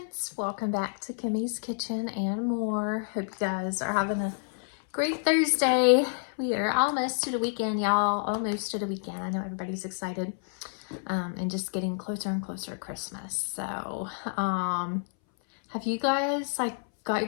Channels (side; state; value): right; silent; 59 dB below the other